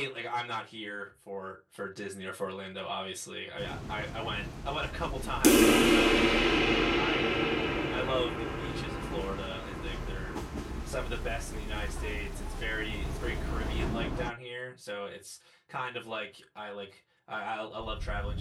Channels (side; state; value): both; identical; correlation 1.00